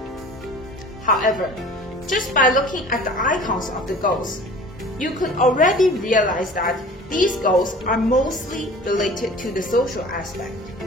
However, just by looking at the icons of the goals, you could already realize that these goals are mostly related to the social aspect.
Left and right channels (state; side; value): normal; both; correlation 0.44